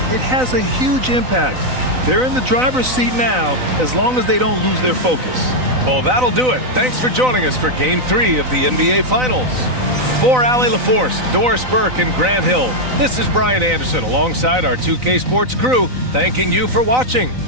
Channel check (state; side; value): late; left; 4.0 ms